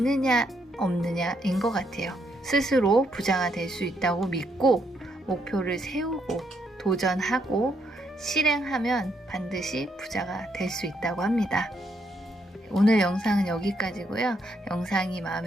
없느냐인 것 같아요. 스스로 부자가 될 수 있다고 믿고 목표를 세우고 도전하고 실행하면 반드시 부자가 될 수 있다고 합니다. 오늘 영상은 여기까지고요. 영상이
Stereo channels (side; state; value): both; normal; correlation 0.76